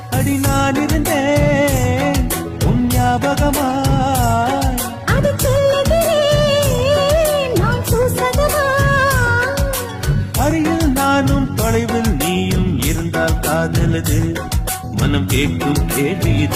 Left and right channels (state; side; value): identical; both; correlation 1.00